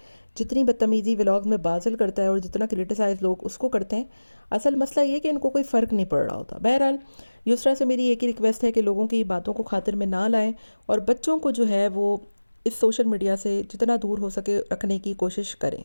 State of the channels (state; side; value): inverted; both; correlation -1.00